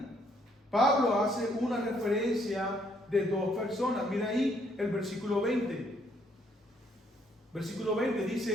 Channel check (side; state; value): both; normal; correlation 0.68